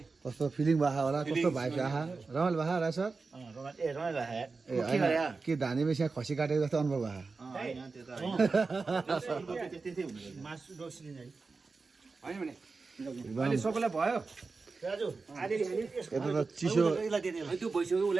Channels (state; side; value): quieter; left; 4.2 dB